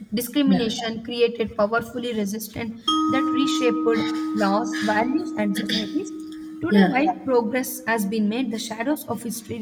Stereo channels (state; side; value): identical; both; correlation 1.00